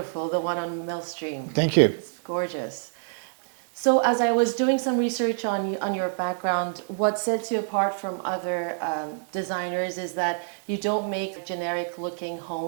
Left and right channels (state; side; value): silent; left; 61 dB below the other